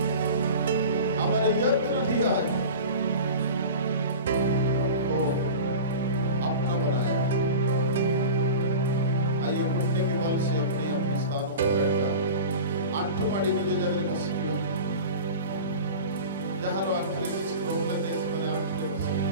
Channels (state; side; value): inverted; both; correlation -0.34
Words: हमारे यत्न दिया है, हमको अपना बनाया। आइए घुटने के बल से अपने अपने स्थानों पर बैठा आंठू माड़ी निज जगह बसिया जहाँ आंठले किसी प्रॉब्लम नहीं समझ आंठले बसी